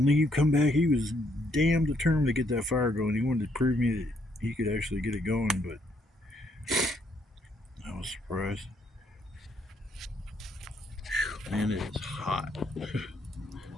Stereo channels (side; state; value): both; normal; correlation 0.71